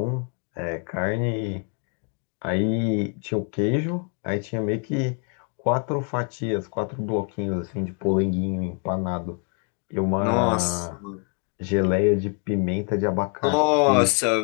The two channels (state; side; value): quieter; right; 39.2 dB